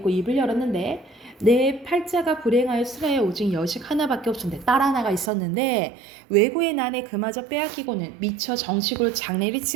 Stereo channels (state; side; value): drops out; left; at 5.3 s